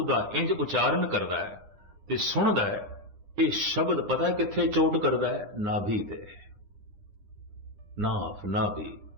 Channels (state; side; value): late; left; 9.9 ms